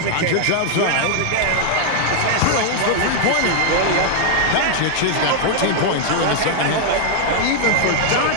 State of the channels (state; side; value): different; both; correlation 0.00